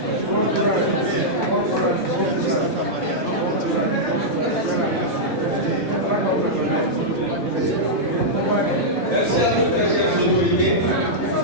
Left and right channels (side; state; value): both; normal; correlation -0.08